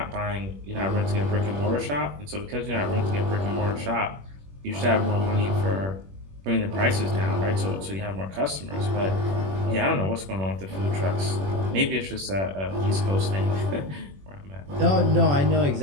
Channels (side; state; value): left; late; 21 ms